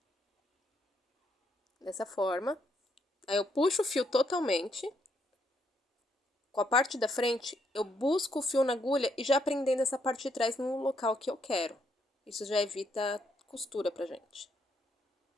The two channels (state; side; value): normal; both; correlation 0.75